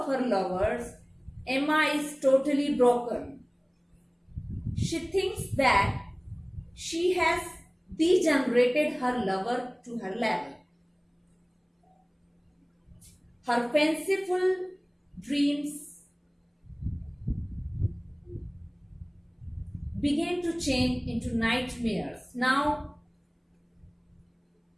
her lovers, Emma is totally broken. She thinks that she has degenerated her lover to her level. Her fanciful dreams began to change into nightmares. Now,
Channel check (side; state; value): both; identical; correlation 1.00